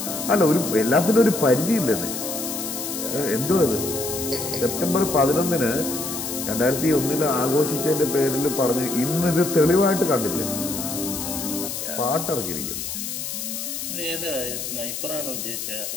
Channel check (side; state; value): left; noise; hiss, 5 dB below the sound